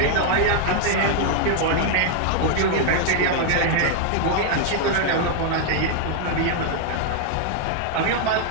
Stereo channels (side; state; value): both; different; correlation 0.00